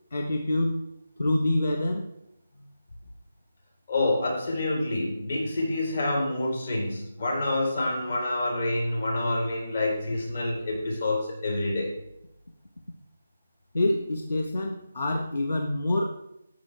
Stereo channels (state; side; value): inverted; both; correlation -0.89